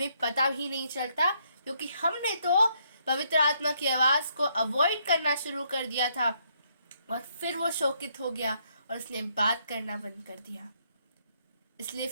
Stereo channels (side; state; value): both; inverted; correlation -0.72